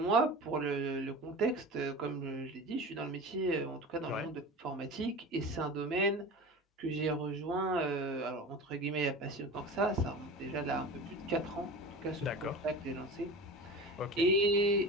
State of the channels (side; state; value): both; normal; correlation 0.33